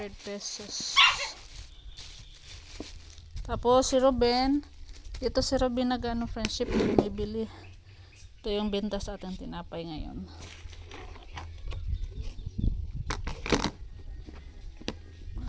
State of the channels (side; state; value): both; identical; correlation 1.00